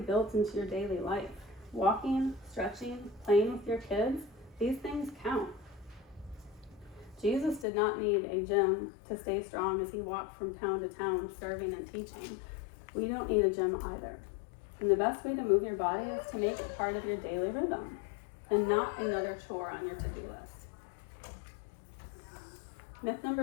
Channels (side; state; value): right; drops out; at 7.7 s